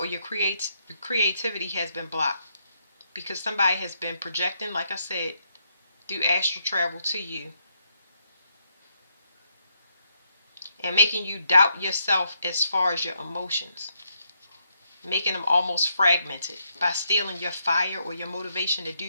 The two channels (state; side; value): inverted; both; correlation -0.77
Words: your creativity has been blocked, because somebody has been projecting, like I said, through astral travel to you and making you doubt yourself as far as your emotions, making them almost fragmented by stealing your fire or your motivation to do